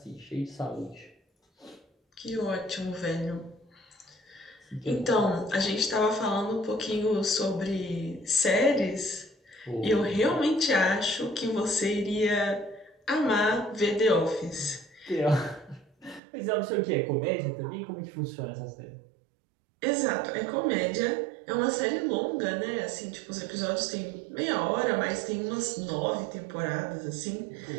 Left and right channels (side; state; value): left; drops out; at 16.2 s